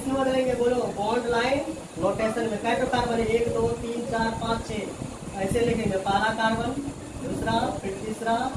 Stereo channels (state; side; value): identical; both; correlation 1.00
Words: में बदलेंगे बोलो, बॉन्ड लाइन नोटेशन में। कैसे कार्बन है 1 2 3 4 5 6, ऐसे लिखेंगे, पहला कार्बन, दूसरा, फिर तीसरा,